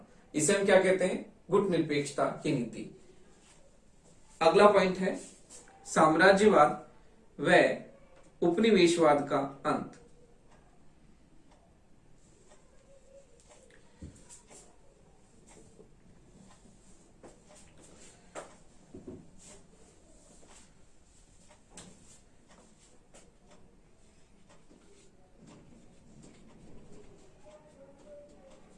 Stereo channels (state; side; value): identical; both; correlation 1.00